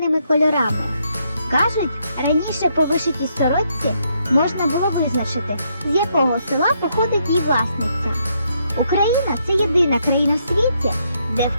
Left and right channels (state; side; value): inverted; both; correlation -0.75